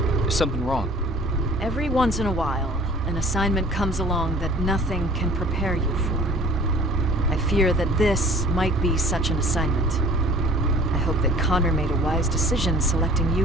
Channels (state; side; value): normal; both; correlation 0.48